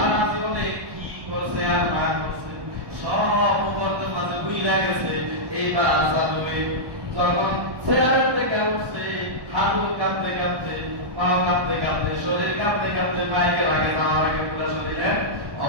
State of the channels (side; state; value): left; late; 1.1 ms